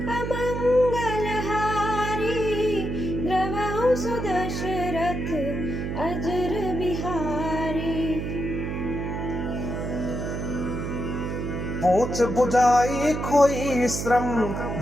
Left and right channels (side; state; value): right; noise; hum, 4 dB below the sound